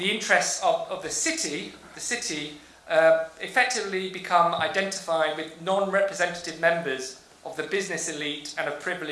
interests of the city effectively become identified with non-representative members of the business elite and of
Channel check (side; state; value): both; identical; correlation 1.00